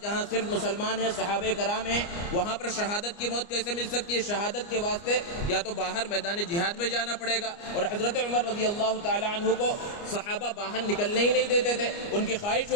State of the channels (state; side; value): late; right; 29 ms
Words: جہاں صرف مسلمان ہیں, صحابہ کرام ہیں, وہاں پر شہادت کی موت کیسے مل سکتی ہے؟ شہادت کے واسطے یا تو باہر میدان جہاد میں جانا پڑے گا, اور حضرت عمر رضی اللہ تعالیٰ عنہ کو صحابہ باہر نکلنے ہی نہیں دیتے تھے. ان کی خواہش